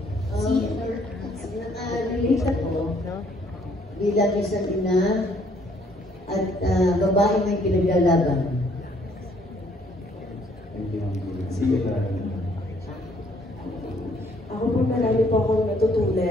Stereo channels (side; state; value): both; normal; correlation 0.64